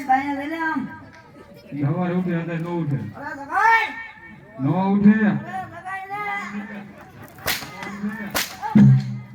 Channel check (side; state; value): both; identical; correlation 1.00